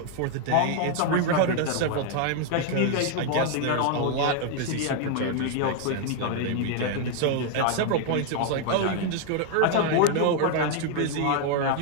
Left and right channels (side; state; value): both; different; correlation 0.01